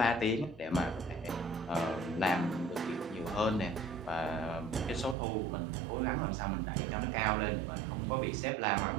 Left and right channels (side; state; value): left; drops out; at 5.2 s